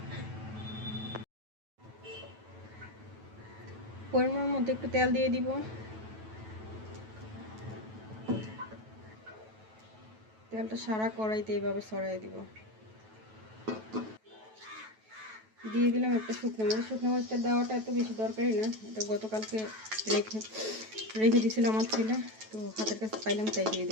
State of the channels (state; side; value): late; left; 9.2 ms